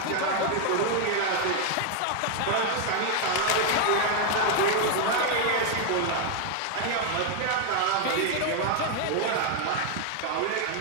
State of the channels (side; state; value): both; different; correlation 0.00